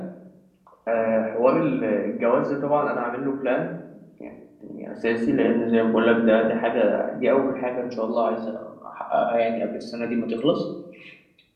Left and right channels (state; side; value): identical; both; correlation 1.00